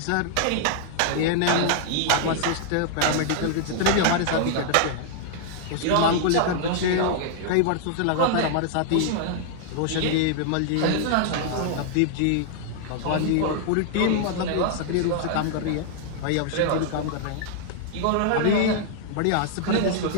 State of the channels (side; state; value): both; different; correlation -0.01